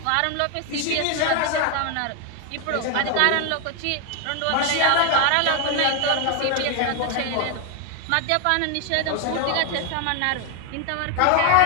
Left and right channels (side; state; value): both; different; correlation 0.00